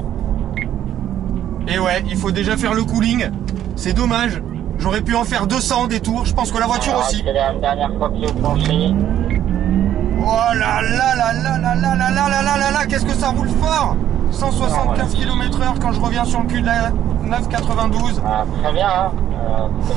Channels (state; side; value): quieter; left; 11.2 dB